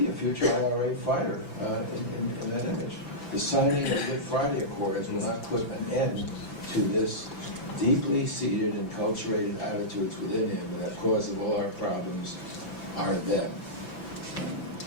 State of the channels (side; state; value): right; late; 5.9 ms